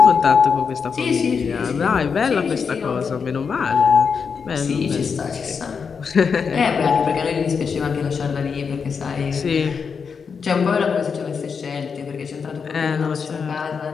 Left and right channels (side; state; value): right; quieter; 5.9 dB